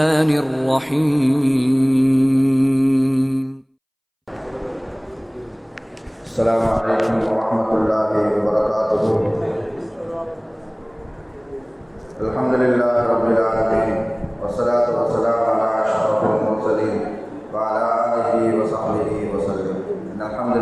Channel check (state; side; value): identical; both; correlation 1.00